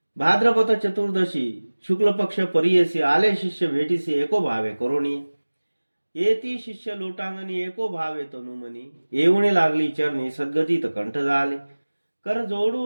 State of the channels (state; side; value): inverted; both; correlation -1.00